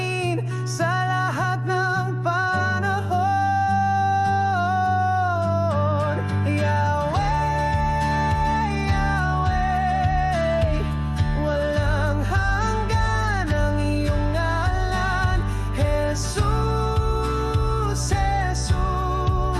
sa lahat ng panahon. Yahweh, Yahweh, walang hanggan ang iyong ngalan. Jesus,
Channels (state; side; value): identical; both; correlation 1.00